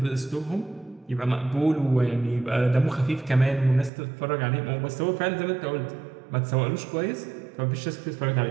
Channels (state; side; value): drops out; left; at 3.9 s